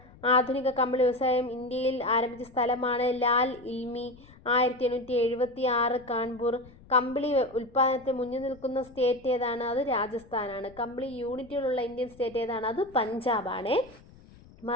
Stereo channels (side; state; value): left; noise; rumble, 23 dB below the sound